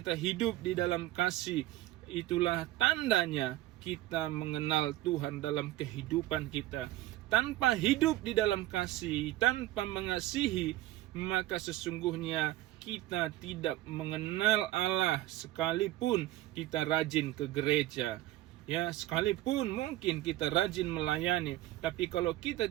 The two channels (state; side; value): quieter; left; 15.9 dB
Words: hidup di dalam kasih. Itulah tandanya kita mengenal Tuhan dalam kehidupan kita. Tanpa hidup di dalam kasih, tanpa mengasihi, maka sesungguhnya kita tidak mengenal Allah, sekalipun kita rajin ke gereja. Ya, sekalipun mungkin kita rajin melayani, tapi kalau kita